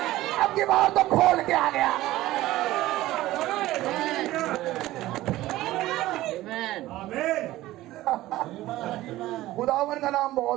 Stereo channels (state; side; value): quieter; left; 16.3 dB